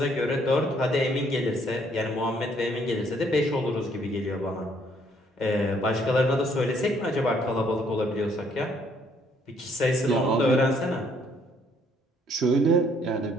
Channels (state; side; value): normal; both; correlation 0.66